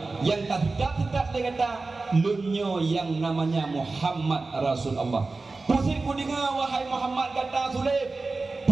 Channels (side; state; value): left; quieter; 3.6 dB